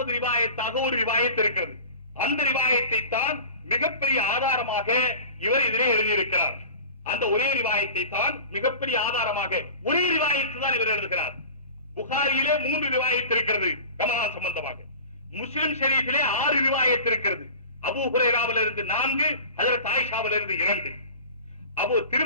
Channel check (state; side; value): inverted; both; correlation -0.37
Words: ரிவாயத்தாக ஒரு ரிவாயத் இருக்கிறது. அந்த ரிவாயத்தை தான் மிகப்பெரிய ஆதாரமாக இவர் இதிலே எழுதியிருக்கிறார். அந்த ஒரே ரிவாயத்தை தான் மிகப்பெரிய ஆதாரமாக, ஒரே ரிவாயத்து தான் இவர் எழுதுகிறார். புகாரியிலே 3 ரிவாயத் இருக்கிறது ரமலான் சம்பந்தமாக. முஸ்லிம் ஷரீஃபிலே 6 ரிவாயத் இருக்கிறது. அபூ ஹுரைராவிலிருந்து 4, ஹஜ்ரத் ஆயிஷாவிலிருந்து 2.